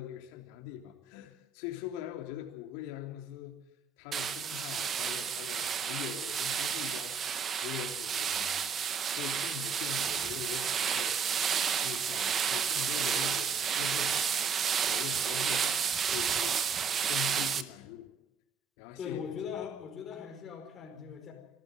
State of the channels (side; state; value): left; quieter; 5.2 dB